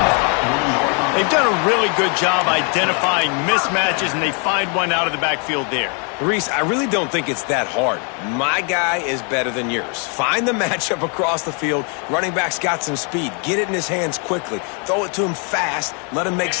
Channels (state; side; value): quieter; right; 38.0 dB